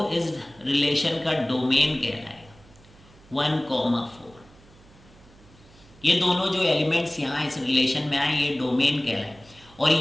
इस रिलेशन का डोमेन कहलाएगा, 1,4। ये दोनों जो एलिमेंट्स यहाँ इस रिलेशन में आए ये डोमेन कहलाए। और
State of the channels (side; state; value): right; noise; hum, 25 dB below the sound